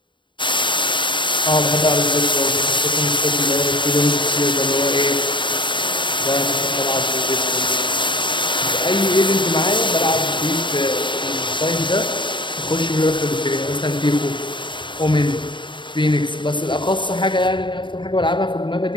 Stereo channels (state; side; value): late; right; 0.23 ms